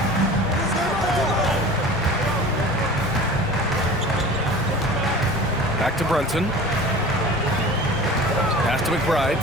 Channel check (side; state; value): both; normal; correlation 0.39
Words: Back to Brunson. Pass to McBride.